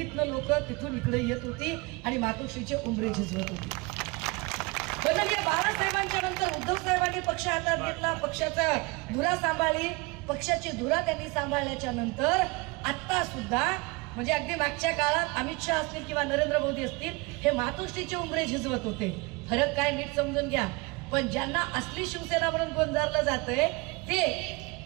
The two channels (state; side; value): quieter; left; 25.8 dB